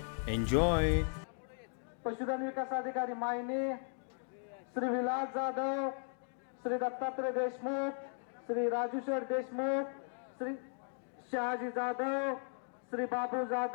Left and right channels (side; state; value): right; silent; 53 dB below the other